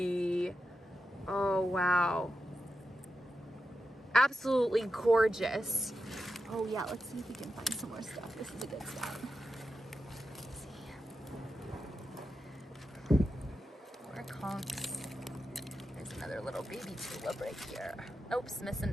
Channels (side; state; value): both; normal; correlation 0.88